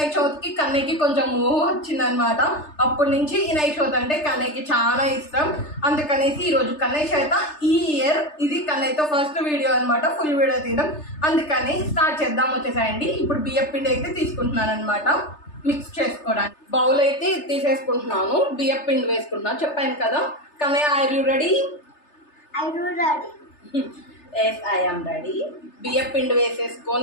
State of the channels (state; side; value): late; right; 3.3 ms